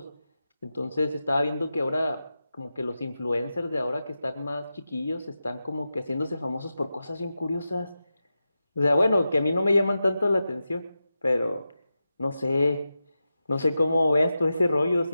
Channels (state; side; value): inverted; both; correlation -0.91